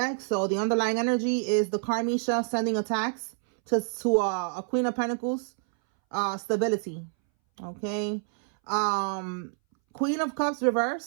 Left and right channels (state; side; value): silent; left; 60 dB below the other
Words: So the underlying energy is the Karmisha sending attacks to a Queen of Pentacles stability. Okay. Queen of Cups